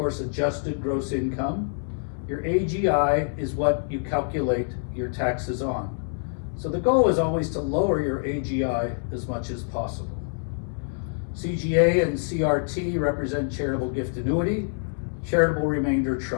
adjusted gross income. Your AGI is what you calculate your taxes on. So the goal is always to lower your AGI as much as possible. CGA and CRT represent charitable gift annuity, charitable remainder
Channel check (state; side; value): silent; right; digital silence